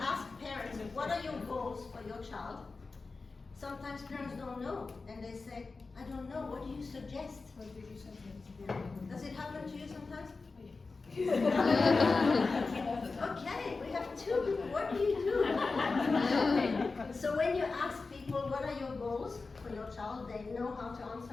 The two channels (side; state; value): right; quieter; 4.0 dB